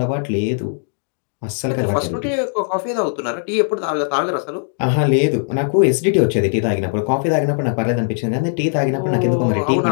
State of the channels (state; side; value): silent; right; digital silence